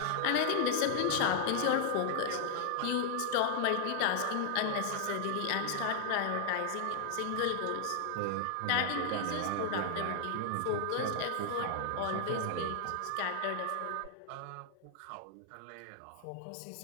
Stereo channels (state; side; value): different; both; correlation 0.00